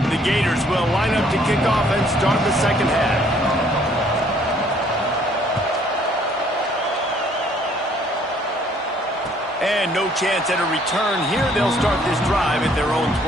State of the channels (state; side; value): normal; both; correlation 0.62